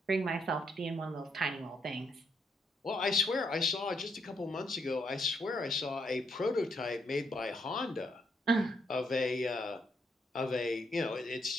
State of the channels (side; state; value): both; normal; correlation 0.75